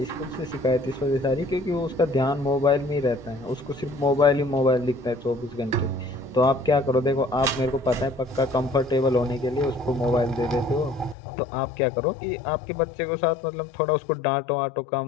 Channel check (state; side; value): drops out; right; at 11.2 s